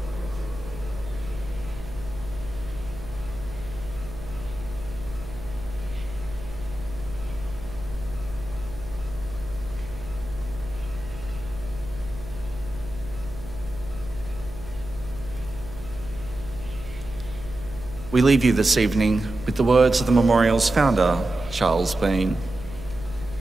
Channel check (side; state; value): right; noise; hum, 14 dB below the sound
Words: We leave you this evening with the words of the memorial's founder, Charles Bean.